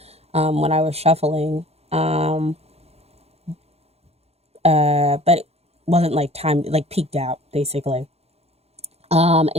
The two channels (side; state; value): left; late; 0.30 ms